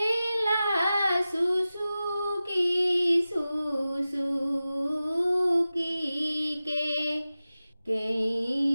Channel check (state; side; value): inverted; both; correlation -0.95